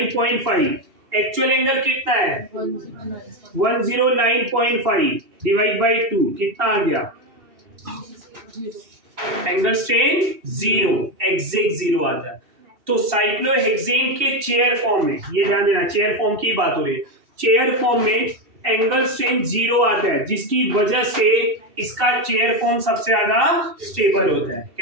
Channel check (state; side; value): late; left; 2.7 ms